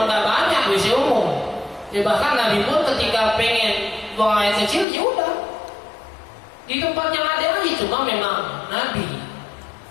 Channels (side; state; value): right; drops out; at 4.9 s